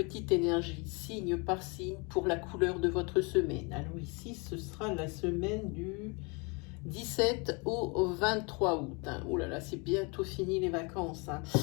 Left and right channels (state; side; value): quieter; right; 30.4 dB